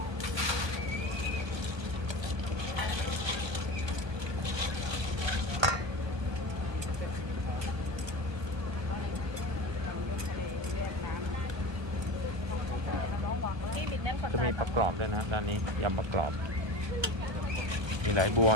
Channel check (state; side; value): late; left; 1.2 ms